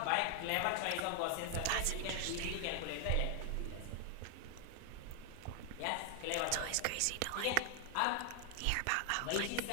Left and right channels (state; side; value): different; both; correlation 0.00